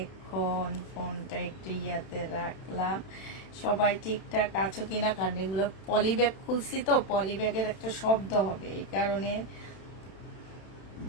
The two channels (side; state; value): right; late; 31 ms